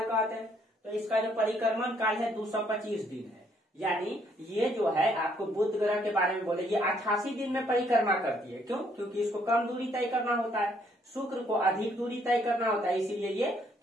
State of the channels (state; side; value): normal; both; correlation 0.68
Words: कहते हैं। तो इसका जो परिक्रमण काल है 225 दिन है। यानी ये जो है आपको बुध ग्रह के बारे में बोले, ये 88 दिन में परिक्रमा करती है। क्यों? क्योंकि इसको कम दूरी तय करना होता है, शुक्र को अधिक दूरी तय करना होता है, इसीलिए ये